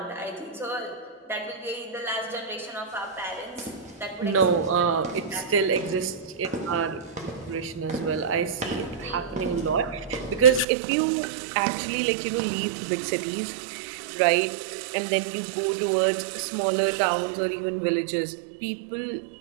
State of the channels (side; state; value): left; drops out; at 10.7 s